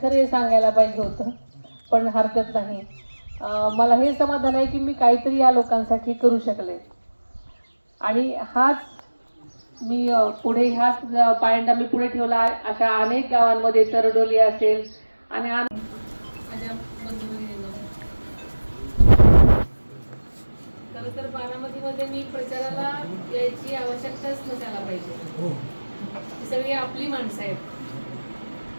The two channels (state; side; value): inverted; both; correlation -1.00